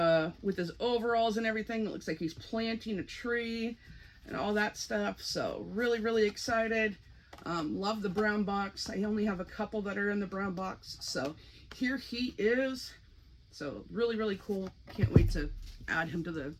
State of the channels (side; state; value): both; identical; correlation 1.00